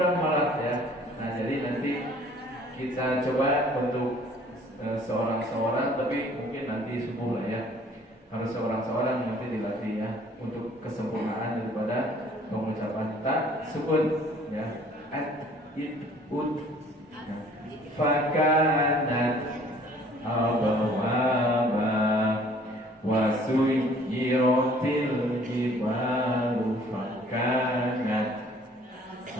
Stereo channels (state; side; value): normal; both; correlation 0.55